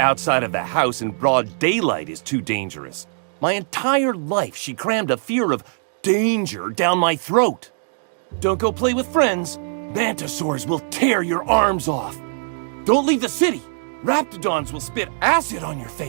of the house in broad daylight is too dangerous. My entire life, she crammed a fear of danger down my throat. Don't go play with friends. Mantisaurs will tear your arms off. Don't leave the city. Raptidons will spit acid on your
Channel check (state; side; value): silent; left; digital silence